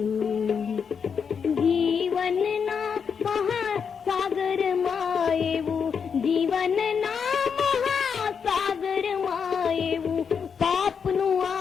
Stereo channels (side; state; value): right; quieter; 6.5 dB